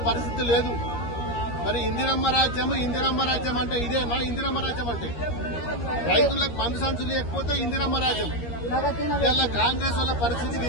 పరిస్థితి లేదు. మరి ఇందిరమ్మ రాజ్యం అంటే ఇదేనా? ఇందిరమ్మ రాజ్యం అంటే రైతులకు మందు సంచులు లేకపోతే ఇందిరమ్మ రాజ్యం. ఇలా కాంగ్రెస్ వాళ్ళ పరిస్థితి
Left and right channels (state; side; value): late; right; 13 ms